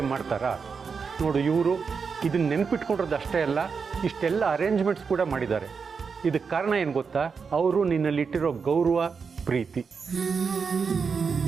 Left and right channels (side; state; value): left; quieter; 5.6 dB